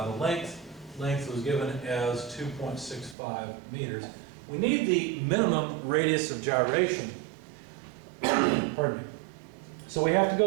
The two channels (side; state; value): left; drops out; at 3.2 s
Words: the length. Length was given as 2.65 meters. We need the minimum radius of gyration. Pardon me. So we have to